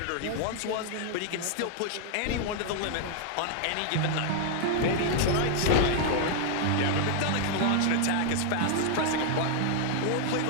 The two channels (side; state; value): both; different; correlation 0.00